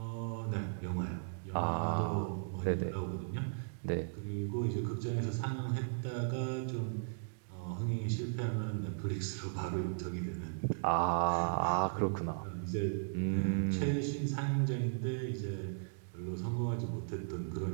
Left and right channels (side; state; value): left; silent; digital silence